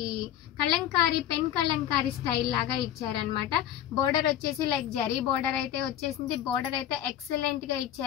కలంకారీ పెన్ కలంకారీ స్టైల్ లాగా ఇచ్చారనమాట. బోర్డర్ వచ్చేసి లైక్ జరీ బోర్డర్ అయితే వచ్చేసింది. బోర్డర్ అయితే ఎక్సలెంట్ గా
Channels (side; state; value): right; quieter; 11.2 dB